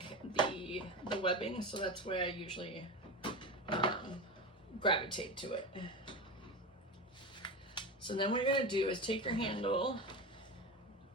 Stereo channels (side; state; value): both; normal; correlation 0.23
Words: the webbing, so that's why I usually gravitate to it. So then what you're gonna do is take your handle,